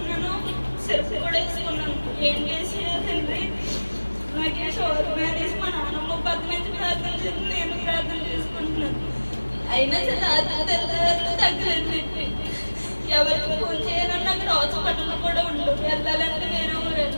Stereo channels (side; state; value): both; inverted; correlation -1.00